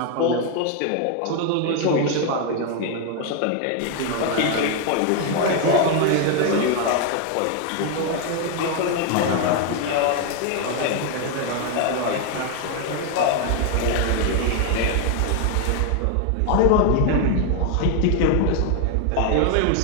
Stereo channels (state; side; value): different; both; correlation 0.00